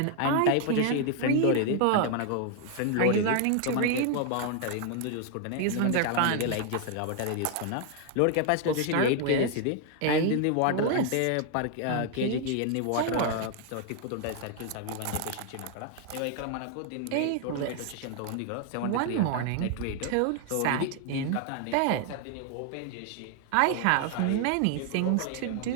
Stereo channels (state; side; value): different; both; correlation 0.00